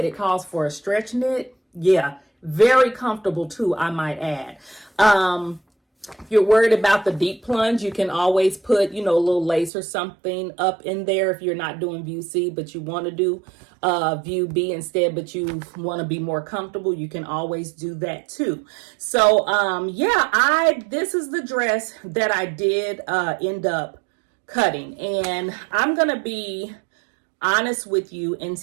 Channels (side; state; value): left; drops out; at 9.7 s